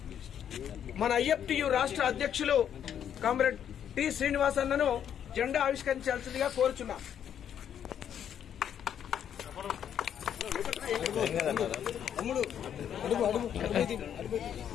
మన ఐఎఫ్టియు రాష్ట్ర అధ్యక్షులు కామ్రేడ్ టి శ్రీనివాస్ అన్నను జెండా ఆవిష్కరించాల్సిందిగా కోరుచున్నాం.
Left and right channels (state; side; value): quieter; right; 9.2 dB